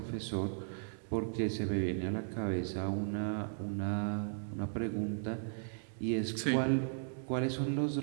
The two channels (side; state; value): left; silent; 54 dB below the other